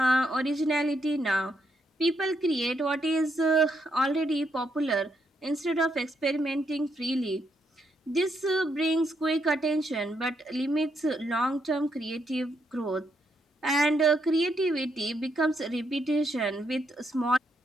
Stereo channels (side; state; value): both; normal; correlation 0.78